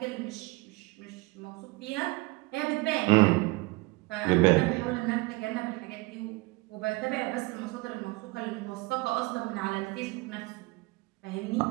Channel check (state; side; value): quieter; left; 24.4 dB